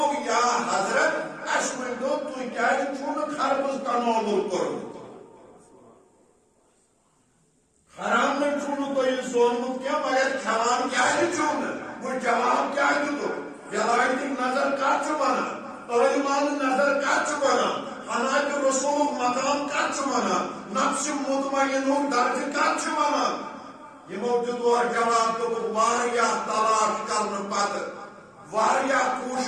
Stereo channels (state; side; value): identical; both; correlation 1.00